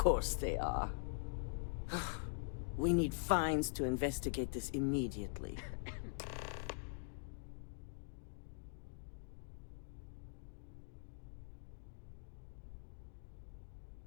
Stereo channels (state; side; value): silent; right; digital silence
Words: they are. We need fines to investigate this immediately.